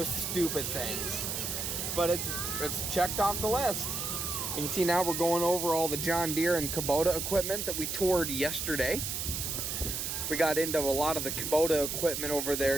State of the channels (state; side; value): noise; right; hiss, 3 dB below the sound